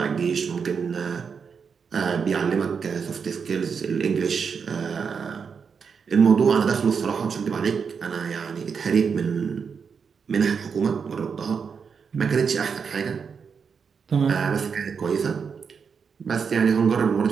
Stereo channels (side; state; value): left; quieter; 6.1 dB